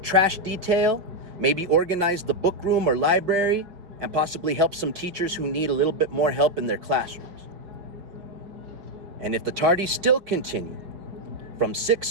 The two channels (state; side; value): late; left; 5.7 ms